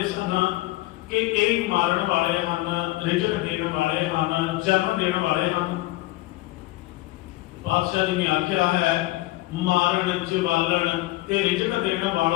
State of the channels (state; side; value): quieter; right; 18.6 dB